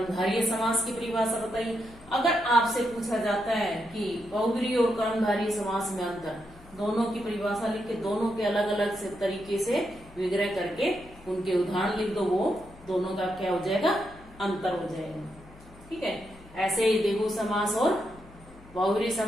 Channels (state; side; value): noise; left; hum, 22 dB below the sound